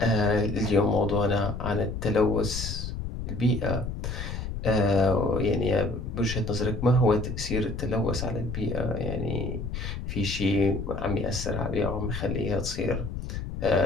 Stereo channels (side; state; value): left; noise; rumble, 6 dB below the sound